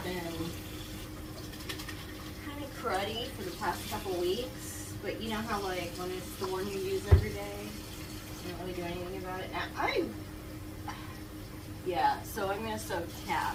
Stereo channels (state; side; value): identical; both; correlation 1.00